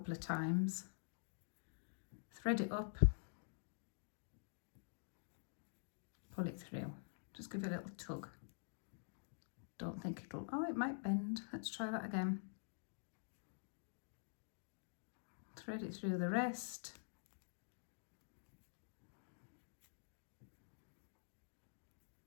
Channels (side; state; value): right; silent; digital silence